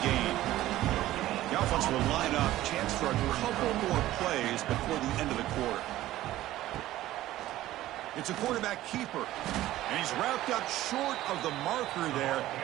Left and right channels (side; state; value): left; quieter; 15.0 dB